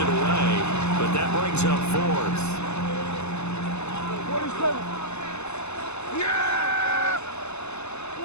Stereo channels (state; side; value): late; right; 0.81 ms